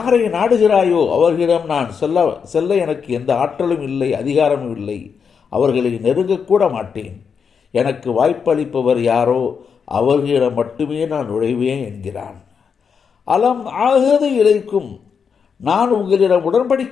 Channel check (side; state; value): right; quieter; 6.4 dB